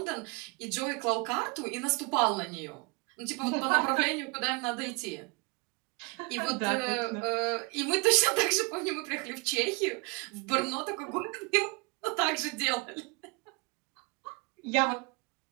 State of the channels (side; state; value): left; quieter; 28.9 dB